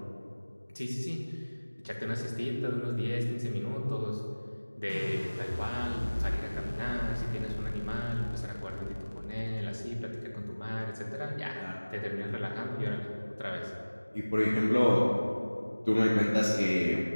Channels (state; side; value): inverted; both; correlation -1.00